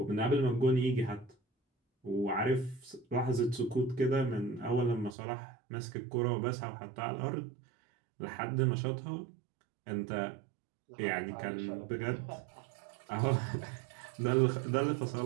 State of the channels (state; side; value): drops out; left; at 5.2 s